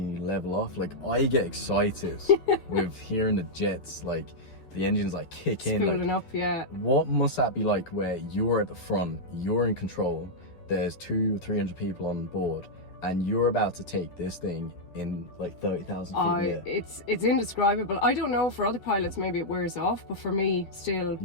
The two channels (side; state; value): right; late; 11 ms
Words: you level off. Like I get excited with hearing the jets, like the engines like kick in, spooling up. Yeah. What must that be like, where you're at the front, you're in control? There's 200-300 people on board, and you're about to take this thing in like 30,000 feet. It's indescribable. I don't know, for other pilots maybe it wears off, but for me still,